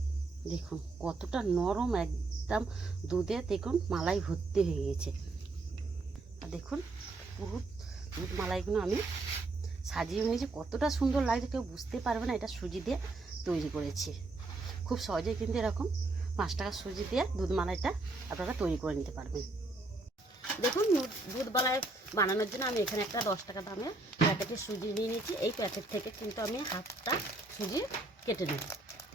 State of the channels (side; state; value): left; quieter; 3.1 dB